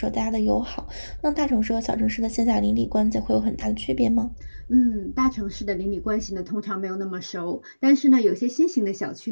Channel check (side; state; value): both; inverted; correlation -1.00